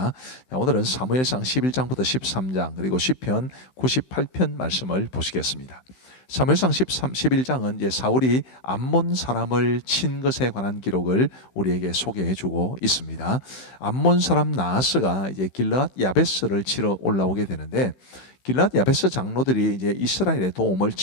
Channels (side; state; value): right; late; 16 ms